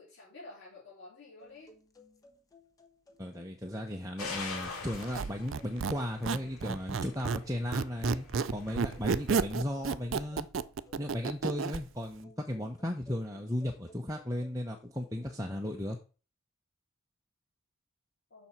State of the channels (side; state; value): both; normal; correlation 0.59